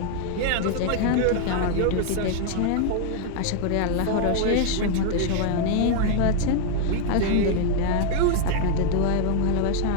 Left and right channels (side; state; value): both; different; correlation 0.00